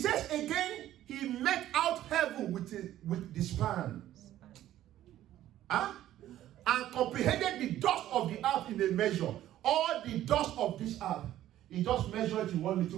again, he met out heaven with the span. Huh? And comprehended the dust of the earth in a measure. All the dust of this earth, he just measured it in one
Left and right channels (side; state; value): left; quieter; 13.1 dB